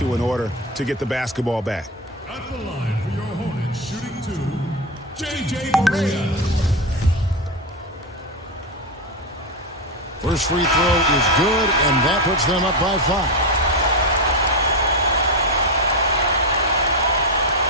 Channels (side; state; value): both; normal; correlation 0.13